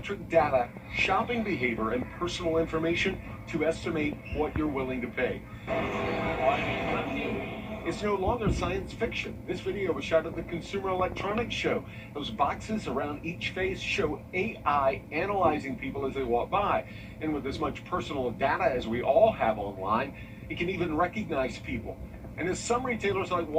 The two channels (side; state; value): both; identical; correlation 1.00